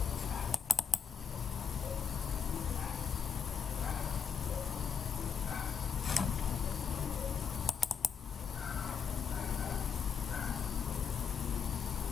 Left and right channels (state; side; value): quieter; right; 6.6 dB